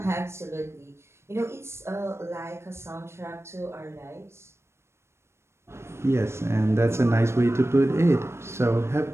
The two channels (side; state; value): left; late; 0.13 ms